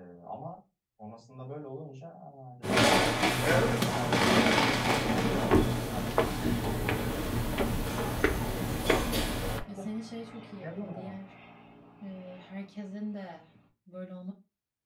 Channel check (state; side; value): identical; both; correlation 1.00